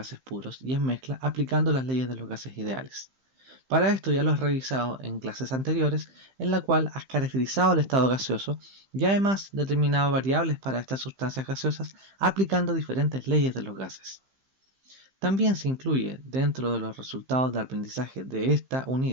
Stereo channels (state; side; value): late; left; 15 ms